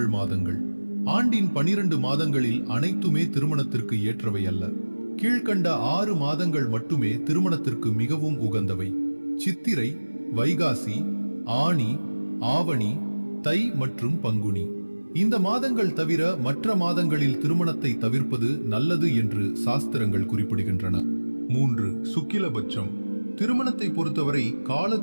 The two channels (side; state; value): both; inverted; correlation -1.00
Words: மாதங்கள். ஆண்டின் 12 மாதங்களில் அனைத்துமே திருமணத்திற்கு ஏற்றவை அல்ல. கீழ்கண்ட 6 மாதங்கள் மட்டுமே திருமணத்திற்கு மிகவும் உகந்தவை: சித்திரை, வைகாசி, ஆனி, ஆவணி, தை மற்றும் பங்குனி. இந்த மாதங்கள் தவிர மற்ற மாதங்களில் திருமணத்தை தவிர்ப்பது நல்லது என்று சாஸ்திரங்கள் குறிப்பிடுகின்றன. 3. சுக்கிலபட்சம். திருமணத்தை பொறுத்தவரை